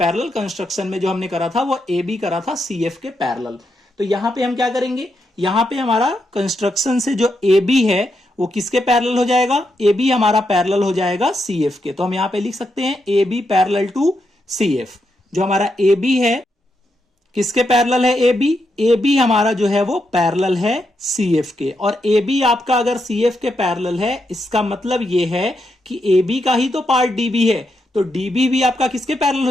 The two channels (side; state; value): both; normal; correlation 0.82